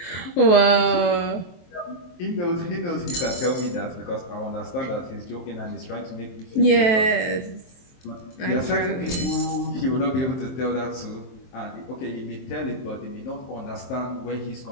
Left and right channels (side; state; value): right; late; 23 ms